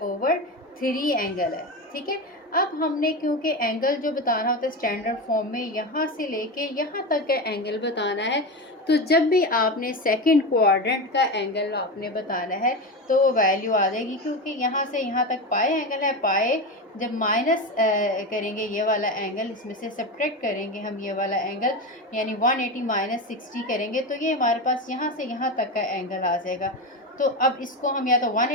एंगल है, ठीक है। अब हमने क्योंकि एंगल जो बताना होता है स्टैंडर्ड फॉर्म में यहाँ से लेके यहाँ तक का एंगल बताना है, तो जब भी आपने सेकंड क्वाड्रेंट का एंगल आपने बताना है तो वो वैल्यू आ जाएगी, क्योंकि यहाँ से यहाँ तक पाई एंगल है। पाई जब माइनस करेंगे ये वाला एंगल, इसमें से सब्ट्रैक्ट करेंगे हम ये वाला एंगल, यानी 180 - 60 करेंगे तो ये हमारे पास यहाँ से यहाँ तक का एंगल आ जाएगा। तो अब इसको हम या तो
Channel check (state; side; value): normal; both; correlation 0.20